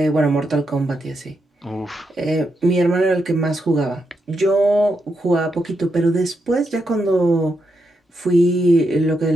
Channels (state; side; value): normal; both; correlation 0.83